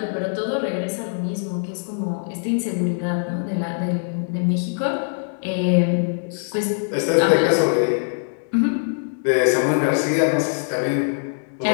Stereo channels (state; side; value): silent; right; digital silence